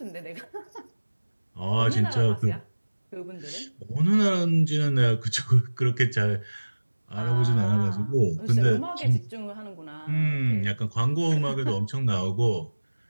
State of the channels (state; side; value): inverted; both; correlation -1.00